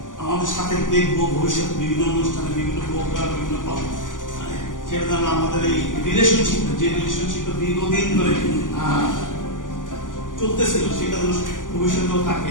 আমাদের সাথে দেখবো ভবিষ্যতে বিভিন্ন অনুষ্ঠানে, বিভিন্ন প্রোগ্রাম বিভিন্ন পাবো, সেটা যেন আমাদের এই রিলেশনশিপ, যে রিলেশনশিপটা দীর্ঘদিন ধরে চলতেছিল, সেটা যেন ভবিষ্যতেও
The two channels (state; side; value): late; right; 0.88 ms